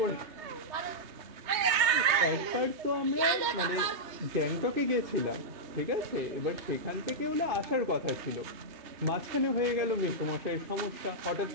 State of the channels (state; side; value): late; left; 3.2 ms